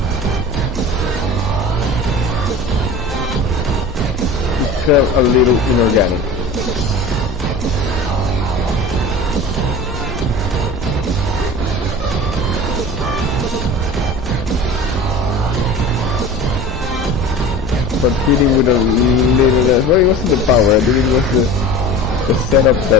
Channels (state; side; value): normal; both; correlation 0.37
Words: It felt a little inorganic. But hitting with a little less. Well, it wasn't the power, I think it was the setup